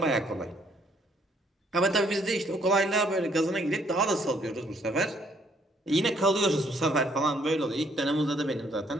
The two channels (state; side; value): normal; both; correlation 0.67